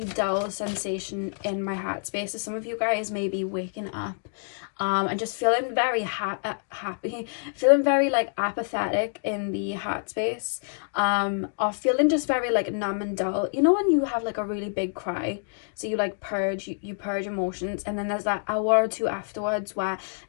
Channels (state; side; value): silent; right; digital silence